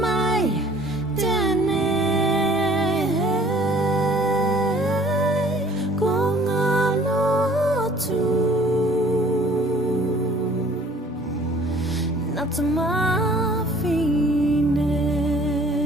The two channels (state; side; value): normal; both; correlation 0.53